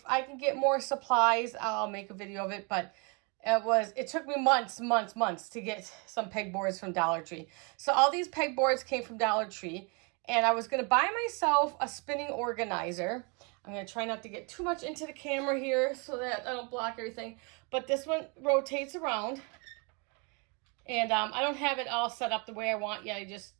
I can get more supplies, I'll make a video of it, but it took me months to get some pegboards from Dollar Tree. So all these pegboards came from Dollar Tree, and I was going to buy myself a spinning organizer. I'm going to try not to get too much into the camera here so that I don't block everything. But this one rotates around. And I don't have it all set up the way I want yet. I just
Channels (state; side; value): quieter; left; 32.8 dB